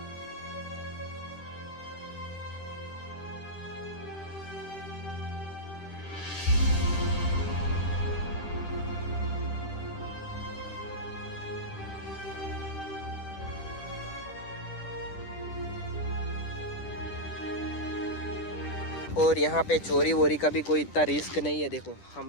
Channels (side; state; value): right; late; 10 ms